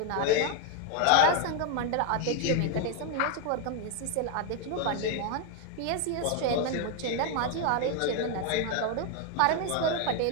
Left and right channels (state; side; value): different; both; correlation 0.01